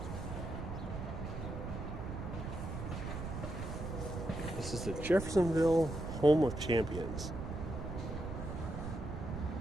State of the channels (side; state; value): right; noise; rumble, 6 dB below the sound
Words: This is the Jeffersonville Home of Champions.